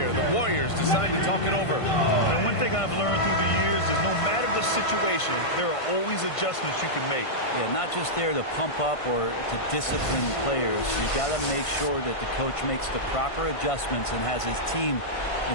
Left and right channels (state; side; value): late; right; 1.5 ms